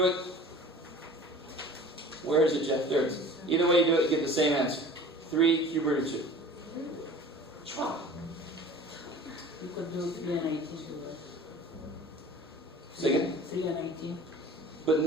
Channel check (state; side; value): normal; both; correlation 0.43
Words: it, where is it, Jeff? There it is. Either way you do it, you get the same answer. 3 cube root of 2. Chua. You could do 3 and 18 too, right? Say again? 3 and 18. But